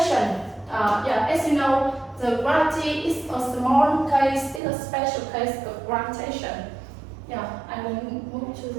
As you know, the gravity is a small case, it's a special case of gravitation. Yeah, I will move to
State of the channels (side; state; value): left; drops out; at 4.6 s